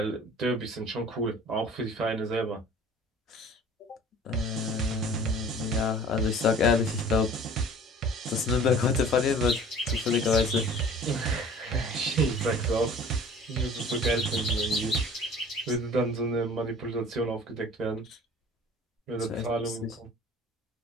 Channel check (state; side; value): normal; both; correlation 0.46